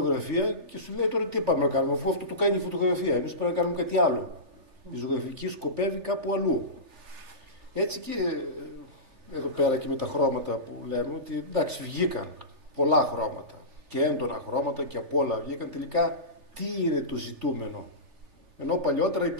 και σου λέει τώρα τι πάμε να κάνουμε, αφού αυτό το κάνει η φωτογραφία. Εμείς πρέπει να κάνουμε κάτι άλλο. Η ζωγραφική σκοπεύει κάπου αλλού. Έτσι και εδώ πέρα και με τα χρώματα που λέμε, ότι εντάξει βγήκαν πολλά χρώματα και έντονα χρώματα και απ' όλα βγήκαν. Τελικά τι είναι το ζητούμενο. Ενώ παλιότερα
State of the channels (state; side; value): late; left; 3.3 ms